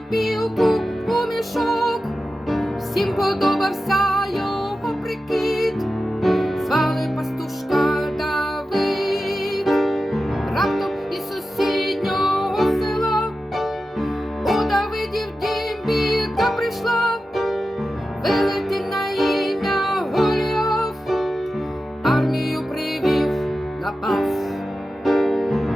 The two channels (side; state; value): both; normal; correlation 0.93